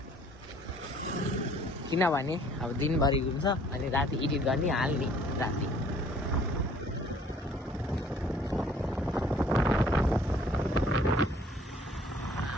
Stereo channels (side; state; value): both; normal; correlation 0.57